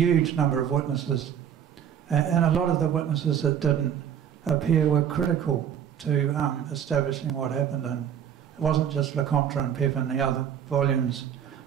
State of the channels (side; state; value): left; quieter; 9.0 dB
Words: number of witnesses. And a lot of the witnesses that didn't appear were critical to establishing what happened. And it wasn't just Lecompte and Pepin, the other volumes